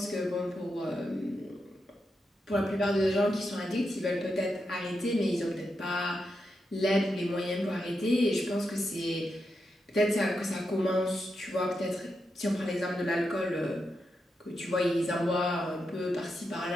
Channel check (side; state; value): both; normal; correlation 0.86